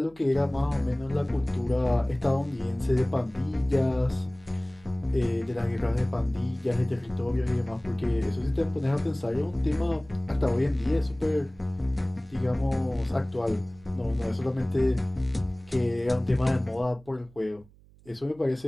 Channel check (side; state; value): right; noise; hum, 26 dB below the sound